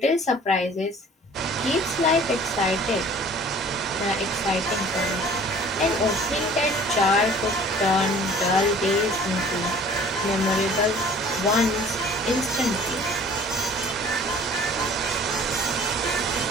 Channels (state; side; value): normal; both; correlation 0.49